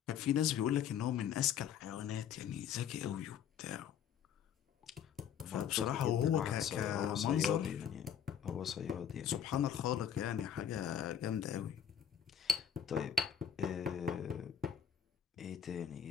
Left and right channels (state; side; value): quieter; right; 8.7 dB